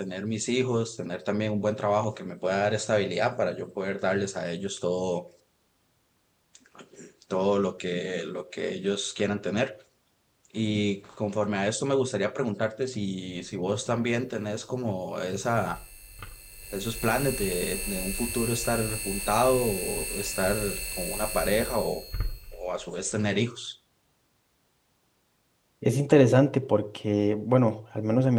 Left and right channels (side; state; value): both; identical; correlation 1.00